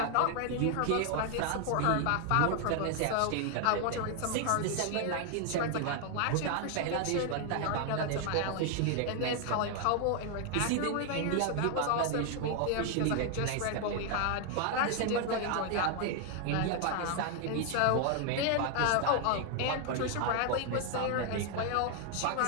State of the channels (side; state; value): both; different; correlation 0.00